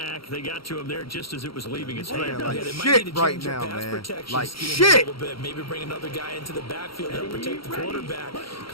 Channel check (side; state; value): right; late; 0.74 ms